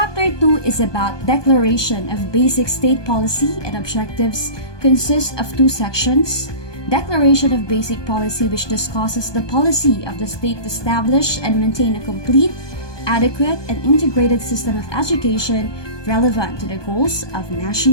2 is about Declaration of Basic State Policy and Objectives. Consists of 2 sections. Declaration of Basic Policy, which discusses the policy of the state to establish and maintain a complete, adequate, and integrated system of education relevant to the goals of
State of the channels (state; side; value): late; right; 1.2 ms